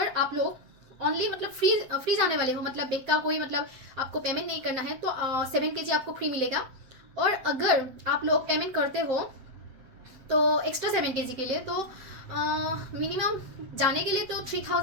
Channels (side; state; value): left; late; 7.6 ms